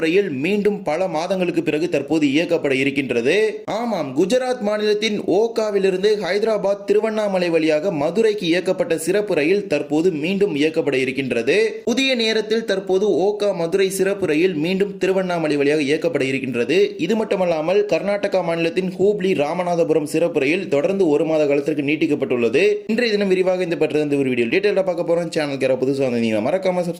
ரயில் மீண்டும் பல மாதங்களுக்கு பிறகு தற்போது இயக்கப்பட இருக்கின்றது. ஆமாம், குஜராத் மாநிலத்தின் ஓகாவிலிருந்து ஹைதராபாத் திருவண்ணாமலை வழியாக மதுரைக்கு இயக்கப்பட்ட சிறப்பு ரயில் தற்போது மீண்டும் இயக்கப்பட இருக்கின்றது. புதிய நேரத்தில் தற்போது ஓகா மதுரை சிறப்பு ரயில் மீண்டும் திருவண்ணாமலை வழியாக இயக்கப்பட இருக்கின்றது. இது மட்டுமல்லாமல் கர்நாடகா மாநிலத்தின் ஹூப்ளி ராமநாதபுரம் சிறப்பு ரயில் தொடர்ந்து ஒரு மாத காலத்திற்கு நீட்டிக்கப்பட்டுள்ளது. இன்றைய தினம் விரிவாக இந்த பற்றி ஒரு வீடியோ டீடைலா பார்க்க போறோம். சேனலுக்கு புதுசாக வந்தீங்கன்னா மறக்காம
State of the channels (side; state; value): both; identical; correlation 1.00